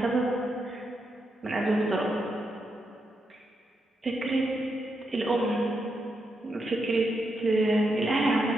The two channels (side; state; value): both; normal; correlation 0.83